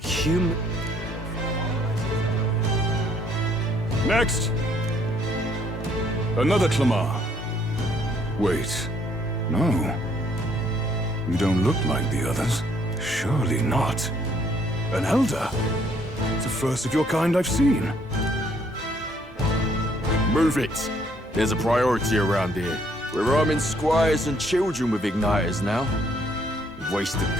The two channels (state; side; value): normal; both; correlation 0.66